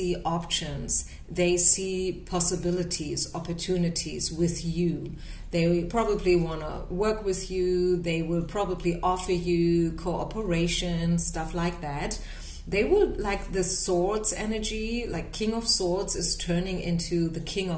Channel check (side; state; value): both; identical; correlation 1.00